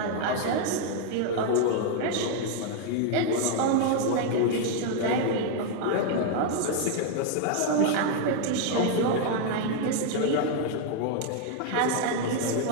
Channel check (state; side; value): different; both; correlation 0.00